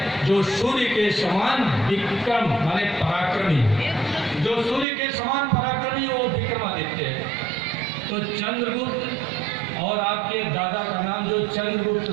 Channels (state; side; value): drops out; left; at 4.9 s